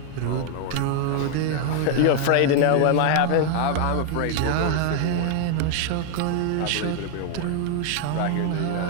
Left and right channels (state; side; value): different; both; correlation 0.00